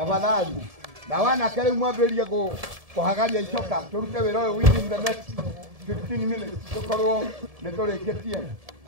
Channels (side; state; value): left; late; 1.7 ms